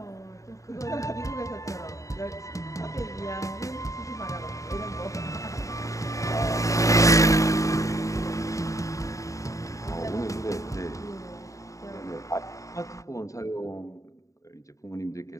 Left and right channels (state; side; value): late; right; 0.16 ms